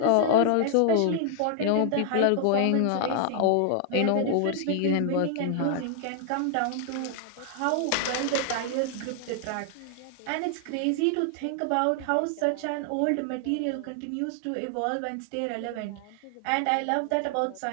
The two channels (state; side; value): different; both; correlation 0.00